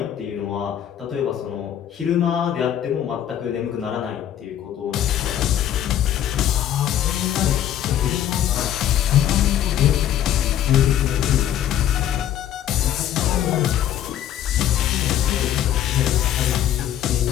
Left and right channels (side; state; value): right; quieter; 10.8 dB